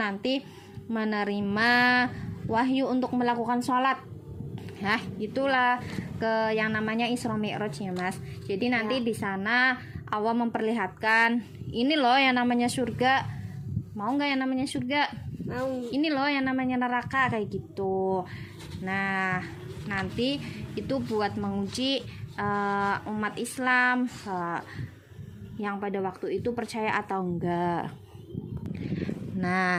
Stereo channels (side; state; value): both; identical; correlation 1.00